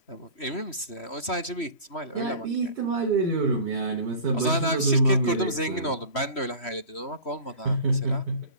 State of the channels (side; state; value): right; late; 3.1 ms